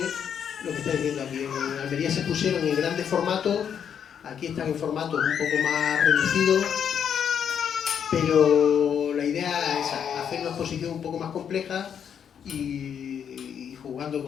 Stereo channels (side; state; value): right; quieter; 8.1 dB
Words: lo que estáis viendo aquí. En Almería se pusieron en grandes formatos, aquí están en formatos un poco más reducidos, pero la idea es hacer una exposición un poco más compleja y jugando